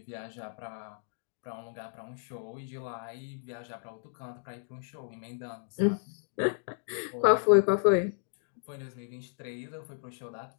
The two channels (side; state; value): right; silent; digital silence